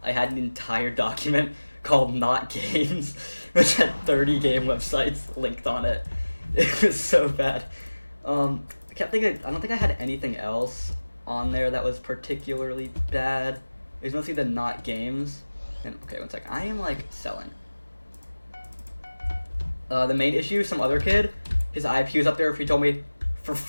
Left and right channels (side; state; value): both; inverted; correlation -1.00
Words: I had an entire document called Not Games, which had 30 game websites linked on it. It was so bad. I don't think I had anything else on there that was particularly bad. It was mostly the Not Games. And okay, one sec. I am like selling. The main issue, some other kid, his IP was up there, he told me, for